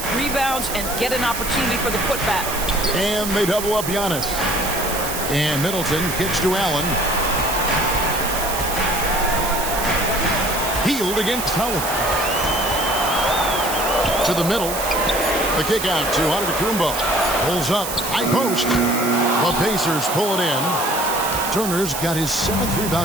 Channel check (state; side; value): noise; right; hiss, 6 dB below the sound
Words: rebounds and get an opportunity for the putback. And they double up Giannis. And Middleton kicks to Allen. Healed against Howard. To the middle. The kick out to Antetokounmpo. Pulls up, high post. The Pacers pull it in. Turner's got his 7th